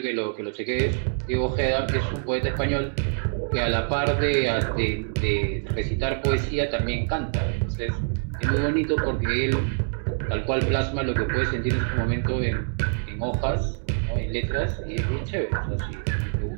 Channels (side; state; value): left; silent; digital silence